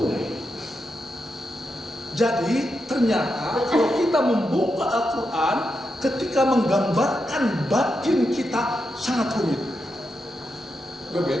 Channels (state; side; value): normal; both; correlation 0.86